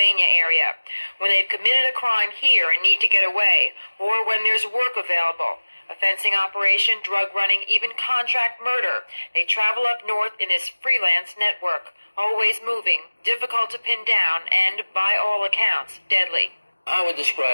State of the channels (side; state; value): both; inverted; correlation -1.00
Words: area. When they've committed a crime here and need to get away, or when there's work available, a fencing operation, drug running, even contract murder, they travel up north in this freelance network, always moving, difficult to pin down, and, by all accounts, deadly. I would